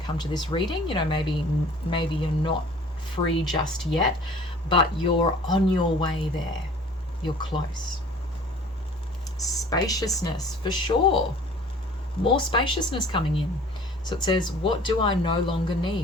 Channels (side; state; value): both; normal; correlation 0.48